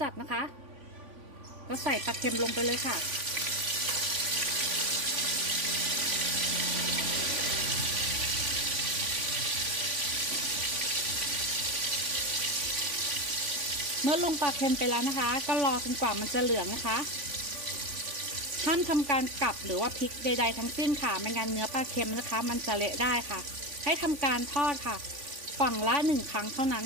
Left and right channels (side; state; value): left; late; 3.5 ms